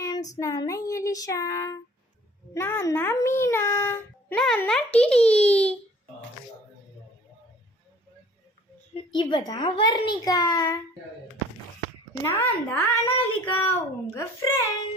ஃப்ரெண்ட்ஸ், நான் தான் எலிஷா, நான் தான் மீனா, நான் தான் டிடி, இவ தான் வர்ணிகா, நான் தான் அனாலிகா, உங்க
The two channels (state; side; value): normal; both; correlation 0.52